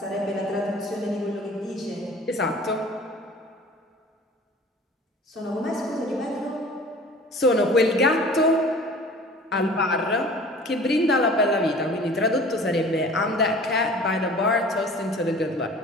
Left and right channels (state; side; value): normal; both; correlation 0.44